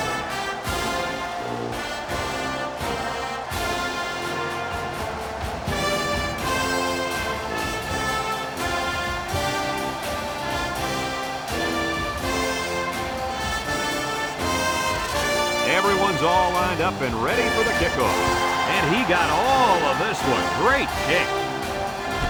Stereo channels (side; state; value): both; identical; correlation 1.00